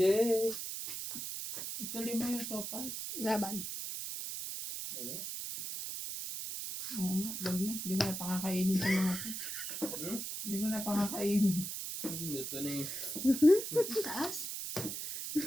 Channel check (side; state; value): right; noise; hiss, 5 dB below the sound